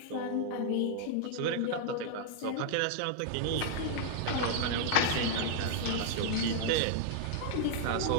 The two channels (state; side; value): different; both; correlation 0.00